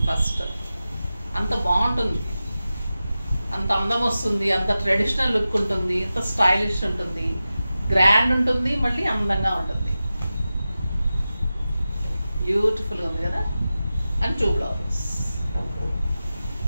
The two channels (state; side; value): inverted; both; correlation -0.94